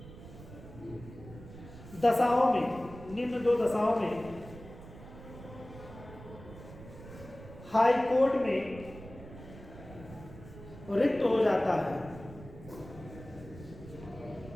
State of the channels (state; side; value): noise; right; rumble, 16 dB below the sound